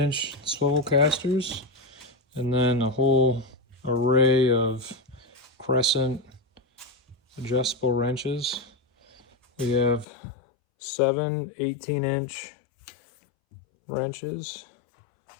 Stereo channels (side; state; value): right; drops out; at 10.1 s